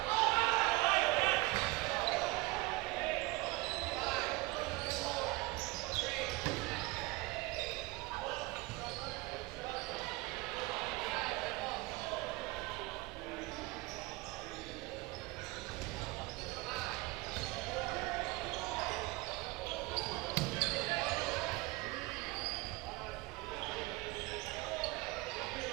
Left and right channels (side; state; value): left; quieter; 22.0 dB